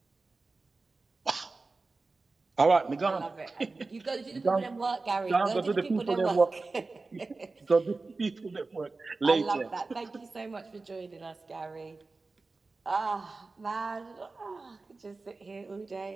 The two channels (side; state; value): left; quieter; 3.7 dB